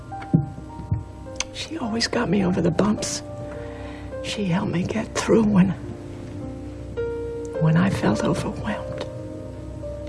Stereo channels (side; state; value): both; identical; correlation 1.00